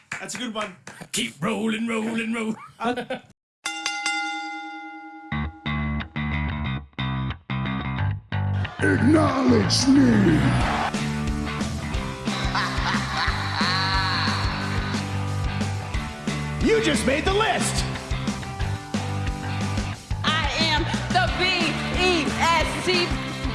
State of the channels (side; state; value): both; identical; correlation 1.00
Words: That's a good one. Keep rolling. Acknowledge me. You just made the list. I am the B-E-S-T.